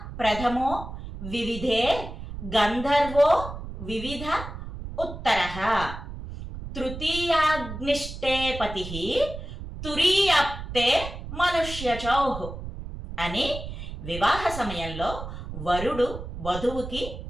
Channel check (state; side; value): noise; right; rumble, 9 dB below the sound